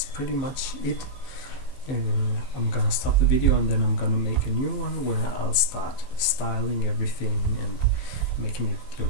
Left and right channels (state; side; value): late; right; 15 ms